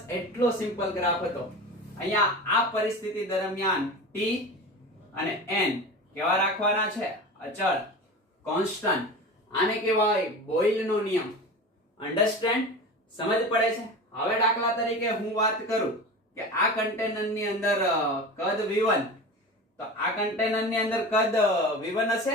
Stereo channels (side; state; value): both; normal; correlation 0.31